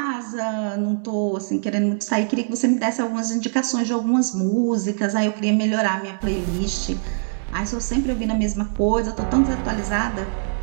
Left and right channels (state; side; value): silent; left; digital silence